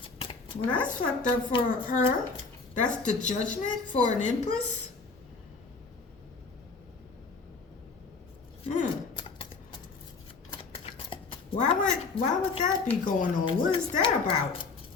Well, that's fucked up for her. That's the judgment for an Empress. Why would that be going on? What is that about?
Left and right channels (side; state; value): right; quieter; 4.3 dB